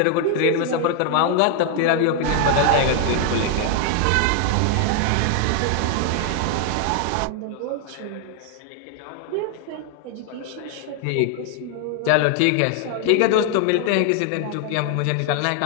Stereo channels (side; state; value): both; different; correlation 0.00